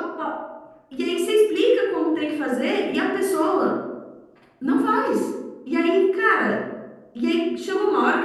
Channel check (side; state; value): both; identical; correlation 1.00